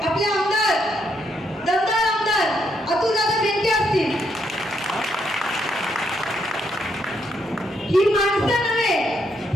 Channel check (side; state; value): both; normal; correlation 0.76